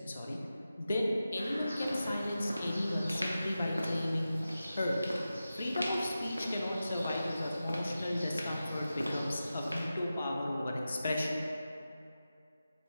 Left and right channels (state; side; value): inverted; both; correlation -0.93